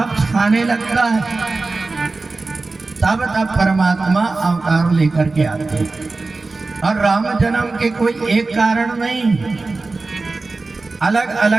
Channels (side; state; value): left; quieter; 3.6 dB